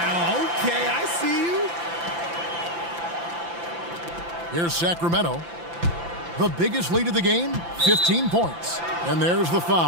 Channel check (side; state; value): left; late; 5.9 ms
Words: okay, I see you. Here's Sacramento. The biggest lead of the game, 15 points. And there's the